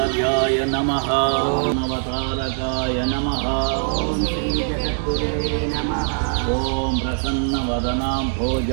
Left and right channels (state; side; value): silent; left; 56 dB below the other